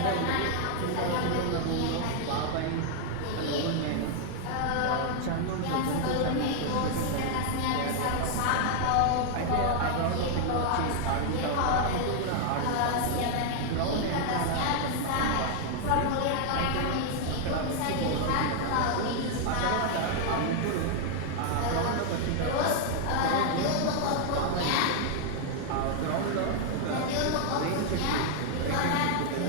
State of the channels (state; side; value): different; both; correlation 0.00